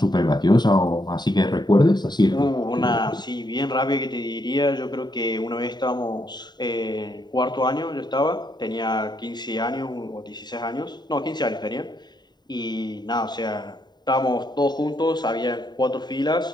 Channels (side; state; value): right; late; 0.21 ms